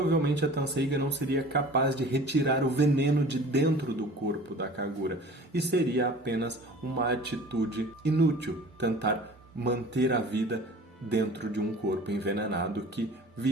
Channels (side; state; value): both; normal; correlation 0.43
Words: a Tenseiga não seria capaz de retirar o veneno de dentro do corpo da Kagura e seria apenas uma atitude inútil tentar manter a vida dentro de um corpo envenenado que